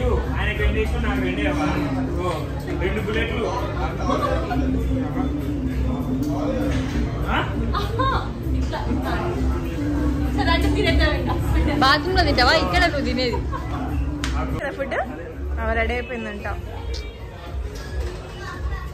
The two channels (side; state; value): both; identical; correlation 1.00